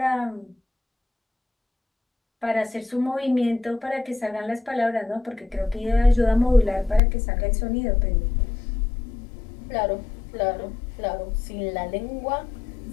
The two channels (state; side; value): drops out; right; at 7.0 s